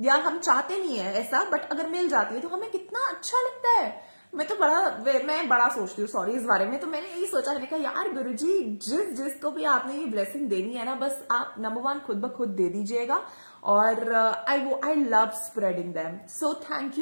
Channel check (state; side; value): inverted; both; correlation -1.00